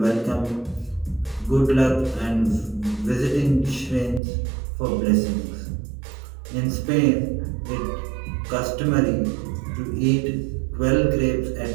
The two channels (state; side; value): drops out; left; at 4.2 s